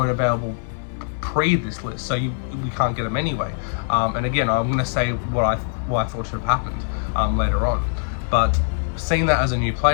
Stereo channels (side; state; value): right; silent; 64 dB below the other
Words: available pre this list, so we can't get them anyway. And again, I'm going to say what I thought should have happened later on. But seeing that as a new